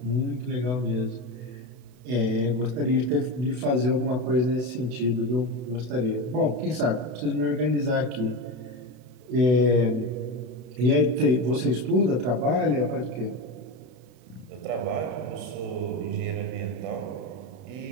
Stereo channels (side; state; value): left; late; 32 ms